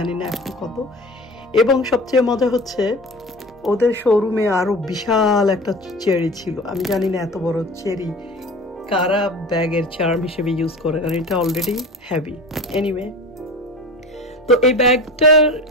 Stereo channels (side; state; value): both; normal; correlation 0.35